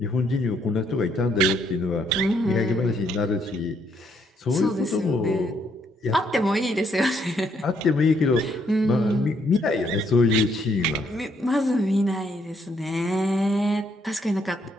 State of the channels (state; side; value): normal; both; correlation 0.71